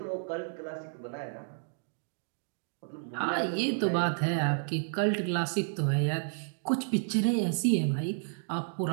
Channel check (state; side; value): silent; left; digital silence